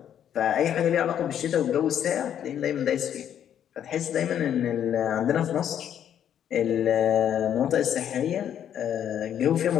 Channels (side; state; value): right; quieter; 9.7 dB